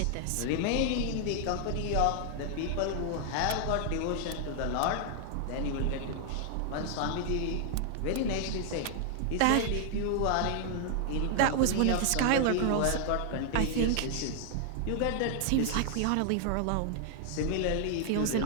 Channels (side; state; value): both; different; correlation 0.00